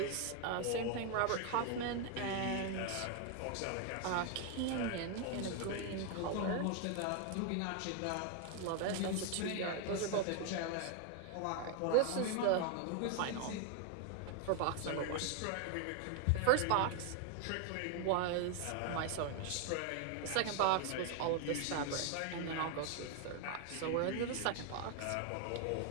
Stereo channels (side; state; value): both; different; correlation 0.00